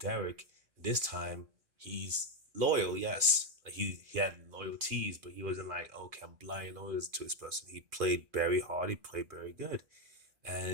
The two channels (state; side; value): late; left; 2.5 ms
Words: This time he's loyal, yes. Like he had loyalties, but he wasn't like, okay, I'm blindly loyal to this person. He played very hard. He played very good,